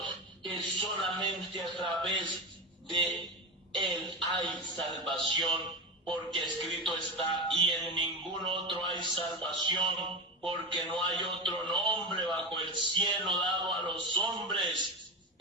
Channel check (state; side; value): normal; both; correlation 0.20